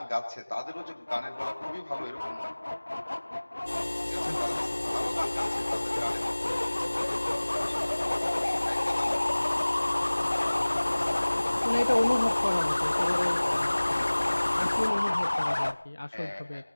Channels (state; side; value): inverted; both; correlation -1.00